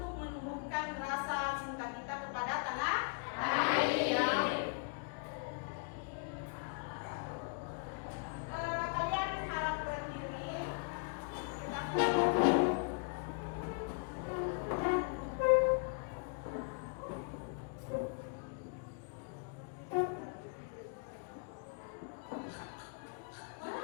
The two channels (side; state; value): right; quieter; 36.5 dB